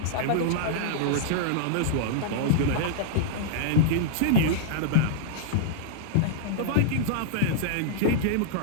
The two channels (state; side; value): different; both; correlation -0.02